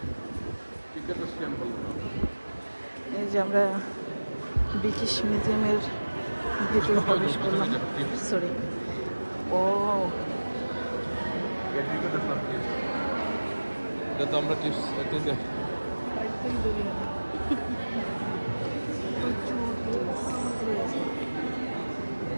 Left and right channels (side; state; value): both; inverted; correlation -1.00